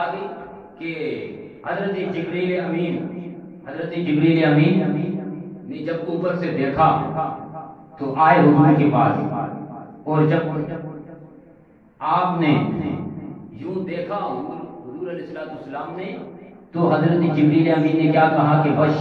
گئی کہ حضرت جبریل امین نے جب اوپر سے دیکھا تو آئے حضور کے پاس. اور جب آپ نے یوں دیکھا حضور علیہ السلام نے تو حضرت جبریل امین نے کیا کہا کہ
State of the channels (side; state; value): both; identical; correlation 1.00